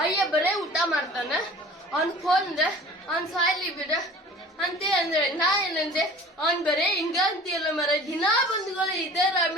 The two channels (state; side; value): normal; both; correlation 0.44